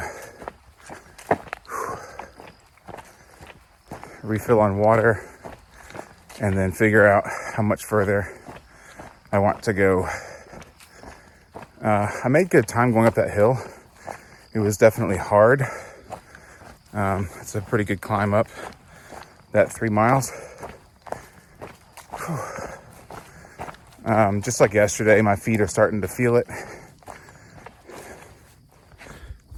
refill on water, and then figure out how much further I want to go. I made good time going up that hill. It was definitely hard. It's a pretty good climb up that 3 miles. Just like yesterday, my feet are starting to feel it.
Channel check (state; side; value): identical; both; correlation 1.00